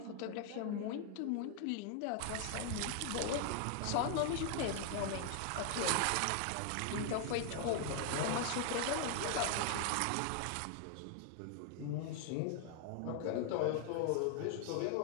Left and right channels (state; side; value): different; both; correlation 0.00